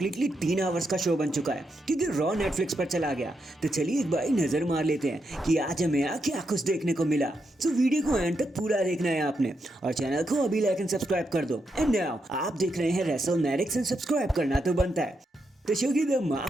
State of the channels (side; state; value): both; normal; correlation 0.83